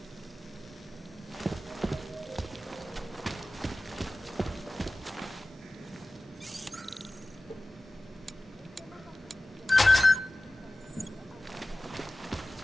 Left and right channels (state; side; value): normal; both; correlation 0.96